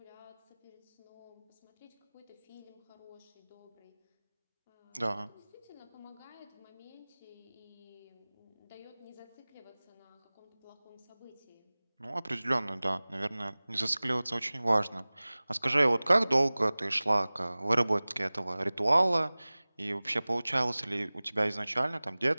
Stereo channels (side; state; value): both; inverted; correlation -1.00